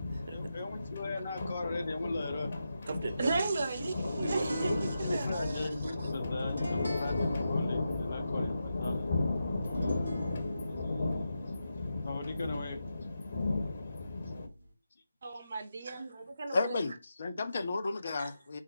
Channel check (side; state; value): both; inverted; correlation -0.88